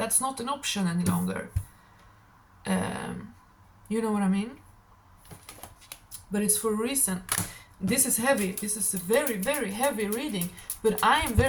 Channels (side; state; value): both; identical; correlation 1.00